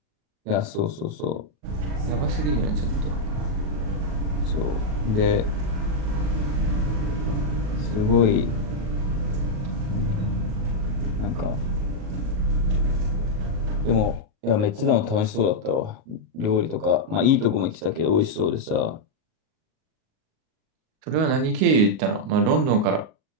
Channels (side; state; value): left; late; 38 ms